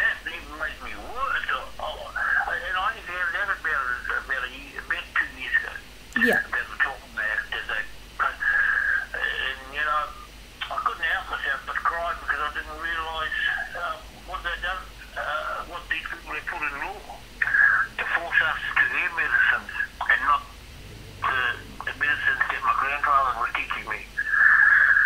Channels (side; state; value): both; identical; correlation 1.00